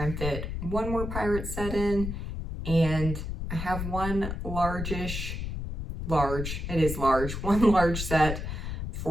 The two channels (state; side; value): noise; left; rumble, 5 dB below the sound